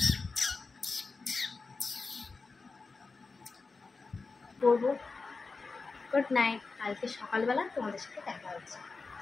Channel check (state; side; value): quieter; right; 4.1 dB